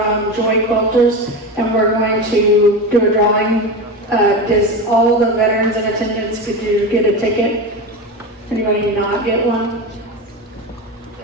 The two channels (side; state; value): both; normal; correlation 0.22